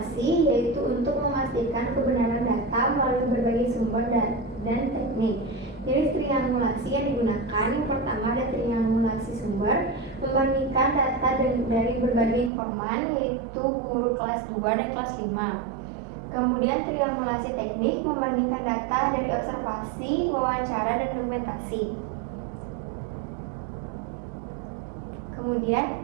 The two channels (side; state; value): left; drops out; at 12.5 s